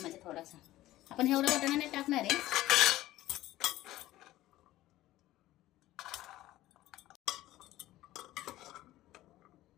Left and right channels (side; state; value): right; quieter; 15.7 dB